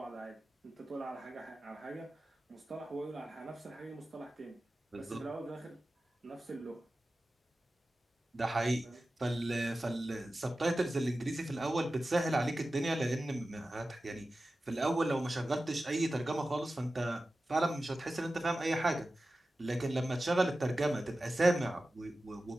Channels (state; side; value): normal; both; correlation 0.94